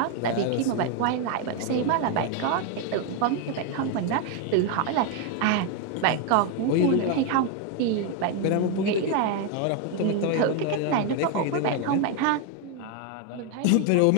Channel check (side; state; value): both; different; correlation 0.01